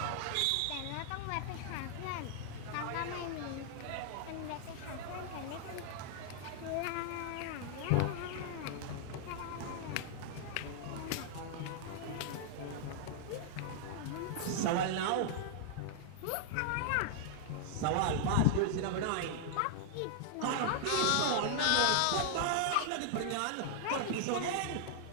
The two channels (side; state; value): both; different; correlation -0.01